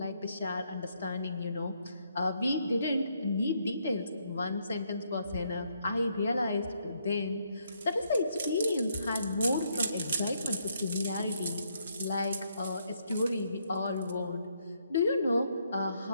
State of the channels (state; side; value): inverted; both; correlation -0.74